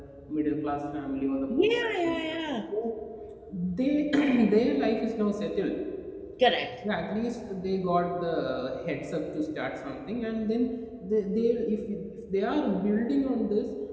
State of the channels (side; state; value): both; identical; correlation 1.00